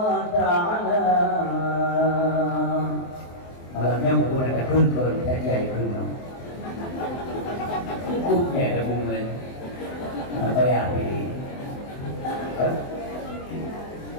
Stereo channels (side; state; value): right; late; 23 ms